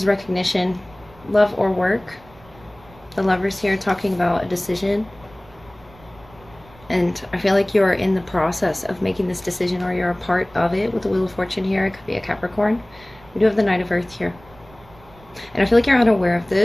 recognition, love or work. The Lovers here talking about a decision. And I feel like you're in the process of making this decision, or you're a part of it with the Wheel of Fortune here. It could be a Capricorn. We do have the Knight of Earth here. And I feel like you're unaware of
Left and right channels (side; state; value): right; noise; rumble, 25 dB below the sound